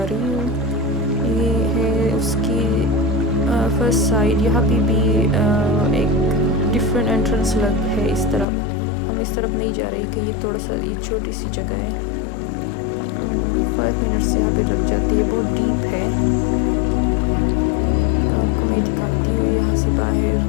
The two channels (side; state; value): right; drops out; at 8.5 s